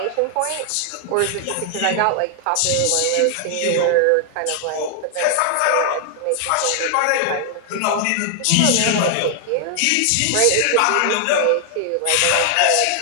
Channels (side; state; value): both; different; correlation 0.00